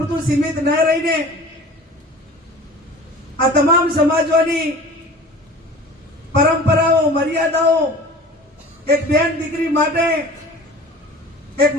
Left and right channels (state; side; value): normal; both; correlation 0.41